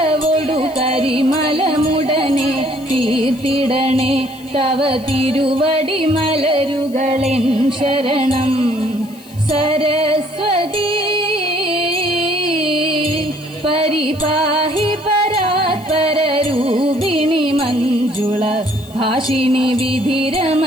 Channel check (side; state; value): left; noise; hiss, 23 dB below the sound